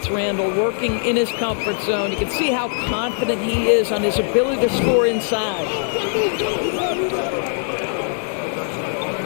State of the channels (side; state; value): right; silent; 65 dB below the other